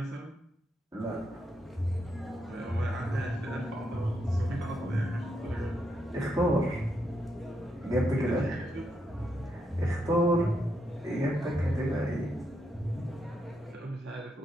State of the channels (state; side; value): normal; both; correlation 0.81